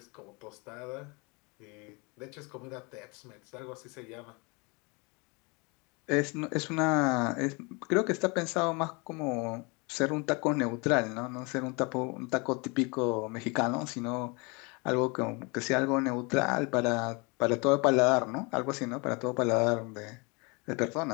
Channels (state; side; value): quieter; right; 29.4 dB